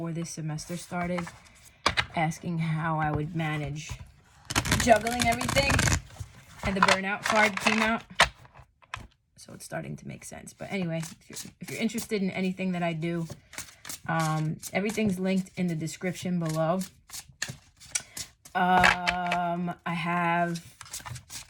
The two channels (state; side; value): identical; both; correlation 1.00